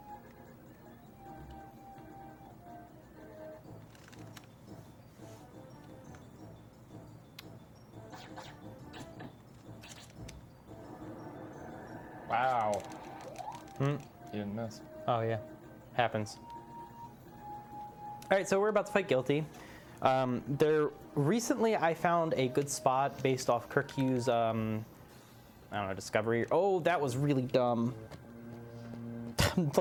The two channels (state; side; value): identical; both; correlation 1.00